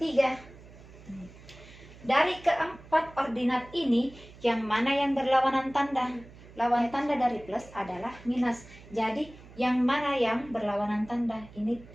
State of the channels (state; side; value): noise; right; hum, 20 dB below the sound